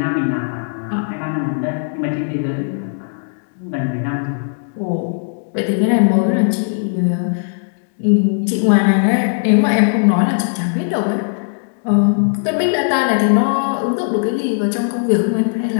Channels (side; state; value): right; silent; digital silence